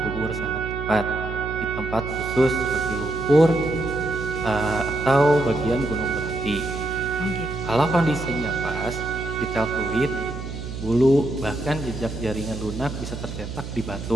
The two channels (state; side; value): noise; right; hum, 8 dB below the sound